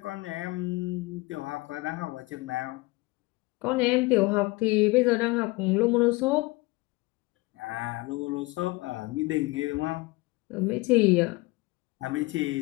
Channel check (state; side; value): quieter; right; 22.8 dB